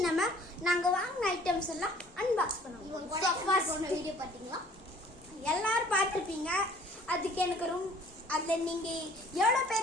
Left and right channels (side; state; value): both; normal; correlation 0.54